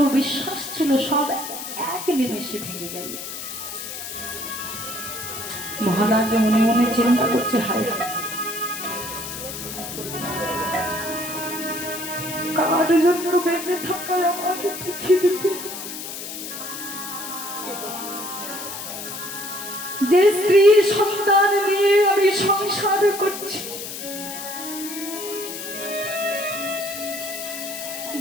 বিশ্বাস ছিল, সব এক নিমেষে ভেঙে গেল। মহারাজ মনে মনে চিন্তা করছে, হায় কার জন্য বেঁচে থাকায় আমাকে পৃথিবীতে যে স্ত্রীর সন্তান নিয়ে আমি সংসার করছি,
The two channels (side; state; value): left; noise; hiss, 8 dB below the sound